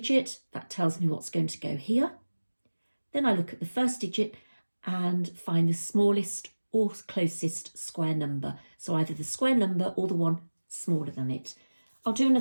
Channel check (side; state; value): both; inverted; correlation -1.00